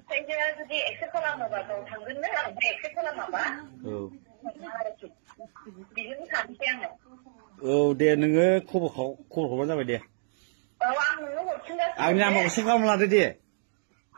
जुदि एक्सेप्ट खालामोबा गाव थांगोननो ओमफ्राय एक्सेप्ट खालामाबा बिजोंनो थानोसै आङो औ दे नोङो खबर हरबानो जाबाय दे औ आं नोंनो हरफिनगासिनो आंनि नाम्बारखौ सेभ खालामना लादो दे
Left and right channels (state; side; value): silent; left; digital silence